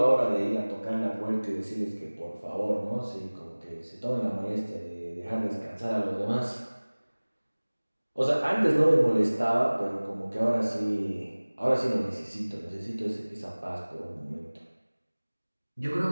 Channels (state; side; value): inverted; both; correlation -1.00